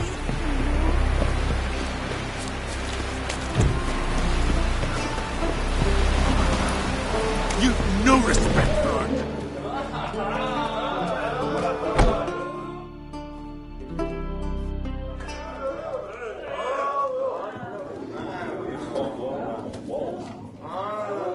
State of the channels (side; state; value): both; identical; correlation 1.00